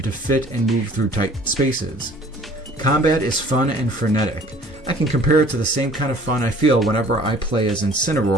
to fit and move through tight spaces. Combat is fun and frenetic. I can compare it to the same kind of fun I feel whenever I play as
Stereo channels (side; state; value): both; normal; correlation 0.52